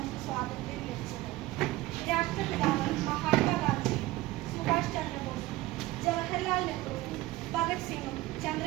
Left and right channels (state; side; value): quieter; left; 18.0 dB